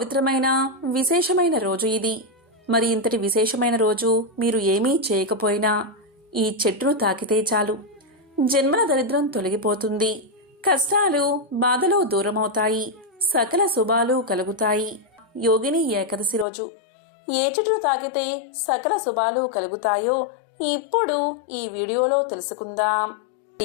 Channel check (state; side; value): drops out; right; at 16.4 s